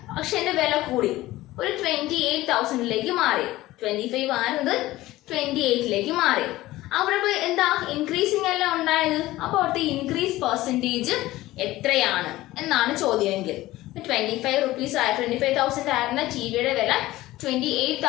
അക്ഷയന്റെ വില കൂടി ഒരു 28,000 മാറി. 25 ആയിരുന്നത് 28 മാറി. അവിടെ ഇപ്പോൾ എന്താ? ഇൻക്രീസിങ് അല്ല ഉണ്ടായത്. അപ്പോൾ അവിടുത്തെ ഇൻക്രീസ് പെർസെന്റേജ് എത്രയാണ് എന്നാണ് ചോദ്യമെങ്കിൽ. 25,000 ആയിരുന്ന ടിവിയുടെ വില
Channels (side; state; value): right; quieter; 17.1 dB